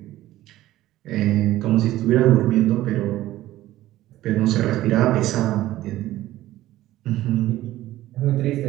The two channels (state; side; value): quieter; left; 15.1 dB